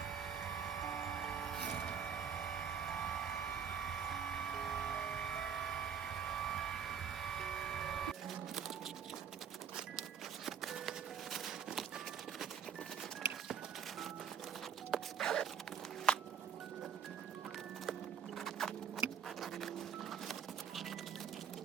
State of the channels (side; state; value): left; quieter; 7.7 dB